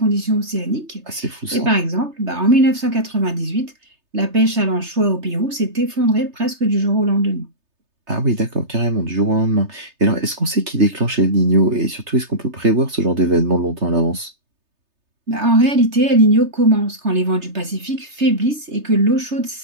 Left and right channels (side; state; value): left; late; 3.3 ms